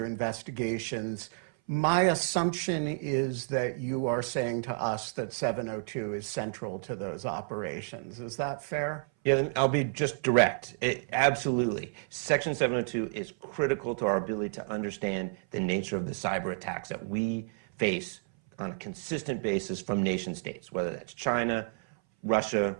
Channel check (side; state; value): left; silent; 57 dB below the other